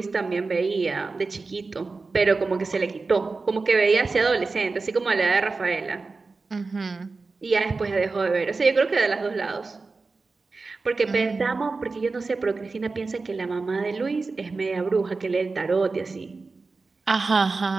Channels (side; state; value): left; quieter; 4.0 dB